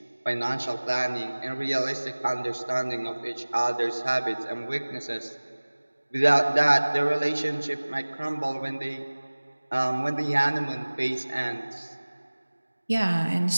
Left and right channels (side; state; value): both; inverted; correlation -1.00